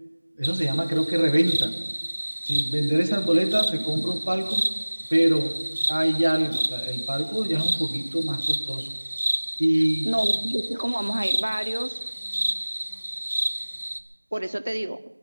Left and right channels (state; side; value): inverted; both; correlation -1.00